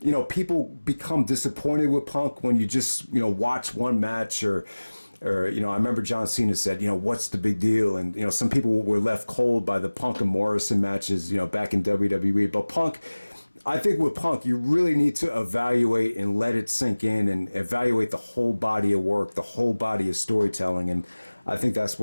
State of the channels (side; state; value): both; inverted; correlation -1.00